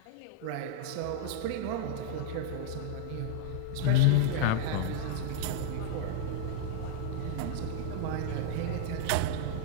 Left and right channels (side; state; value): both; different; correlation -0.01